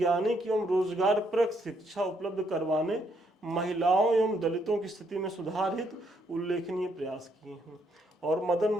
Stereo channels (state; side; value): normal; both; correlation 0.73